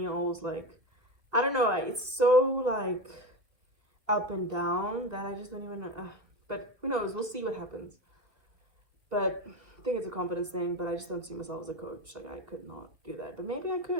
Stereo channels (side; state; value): left; late; 2.2 ms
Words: like, I don't know, it's so like up and down that I just don't even know. But who knows? We'll see what happens. But I think it's a confidence thing, but I just don't see myself as a coach. Like, I could not do that, but maybe I